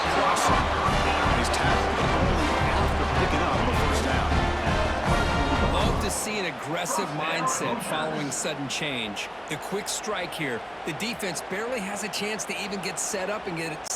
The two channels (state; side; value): identical; both; correlation 1.00